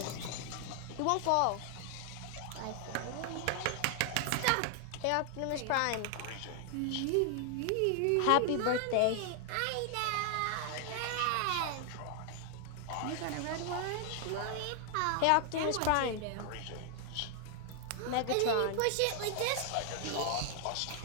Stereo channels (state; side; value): different; both; correlation 0.00